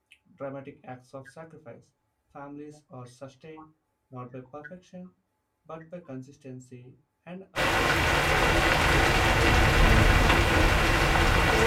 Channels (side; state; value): both; identical; correlation 1.00